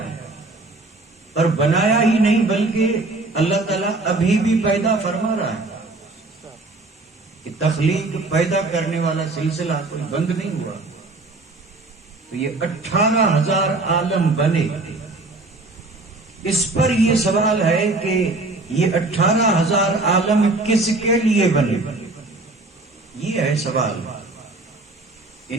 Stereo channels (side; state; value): left; quieter; 3.1 dB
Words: اور بنایا ہی نہیں بلکہ اللہ تعالیٰ ابھی بھی پیدا فرما رہا ہے کہ تخلیق پیدا کرنے والا سلسلہ کوئی بند نہیں ہوا۔ تو یہ 18,000 عالم بنے، اس پر یہ سوال ہے کہ یہ 18,000 عالم کس کے لیے بنے؟ یہ ہے سوال۔